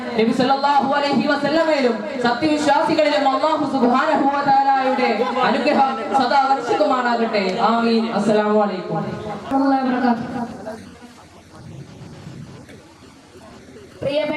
നബി സല്ലല്ലാഹു അലൈഹി വസല്ലമയിലും സത്യവിശ്വാസികളിലും അല്ലാഹു സുബ്ഹാനഹു വ തആലയുടെ അനുഗ്രഹം സദാ വർഷിക്കുമാറാകട്ടെ. ആമീൻ. അസ്സലാമു അലൈക്കും വറഹ്മത്തുള്ളാഹി വബറകാതുഹു.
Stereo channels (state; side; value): identical; both; correlation 1.00